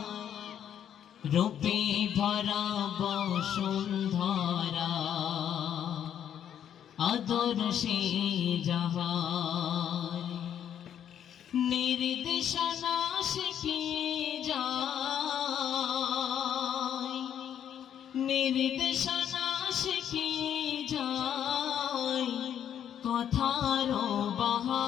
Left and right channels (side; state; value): right; quieter; 9.5 dB